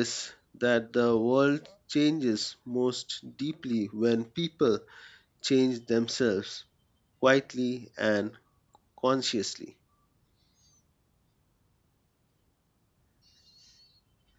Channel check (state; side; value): identical; both; correlation 1.00